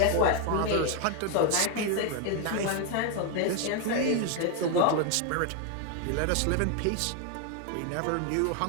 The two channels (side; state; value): both; different; correlation 0.01